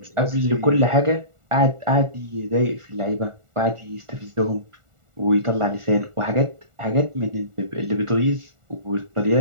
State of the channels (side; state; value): left; late; 1.4 ms